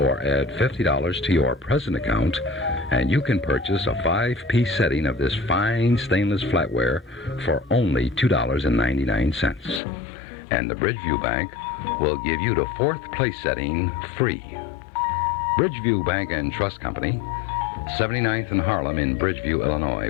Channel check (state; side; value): drops out; right; at 9.8 s